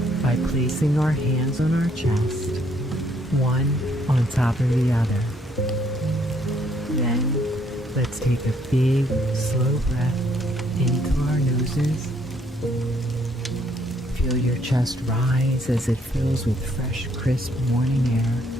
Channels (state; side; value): normal; both; correlation 0.68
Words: by placing our hands on our chest, one on top of the other. Then, let's take a big, slow breath into our noses. Feel your chest rise as it fills with fresh, crisp morning air.